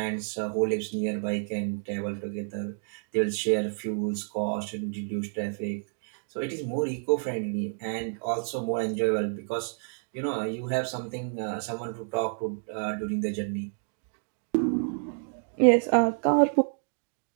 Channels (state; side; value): silent; left; digital silence